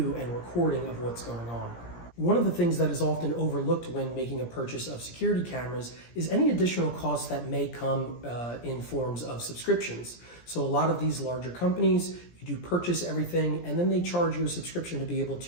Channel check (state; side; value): late; right; 17 ms